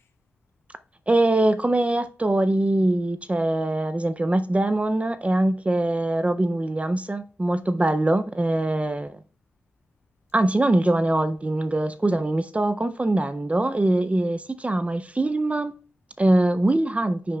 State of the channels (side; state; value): both; normal; correlation 0.96